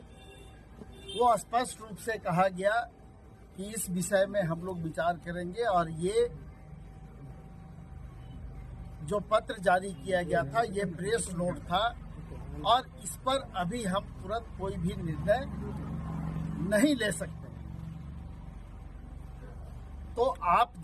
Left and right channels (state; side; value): identical; both; correlation 1.00